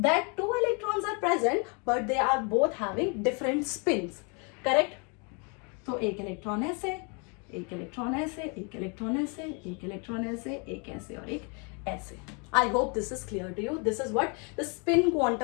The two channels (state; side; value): quieter; right; 34.8 dB